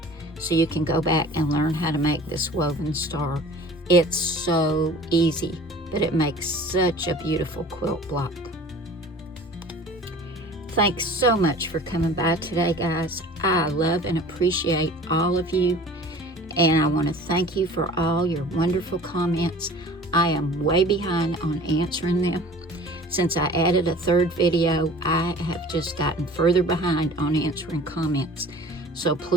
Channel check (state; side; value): normal; both; correlation 0.44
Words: so you can go back and learn how to make this woven star. It's so easy, but it makes such a beautiful quilt block. Thanks so much for coming by today, guys. I love and appreciate all of you, and I want to thank you for all your wonderful comments. I am way behind on answering them. Since I added a third video, I have just gotten further behind on answering comments. So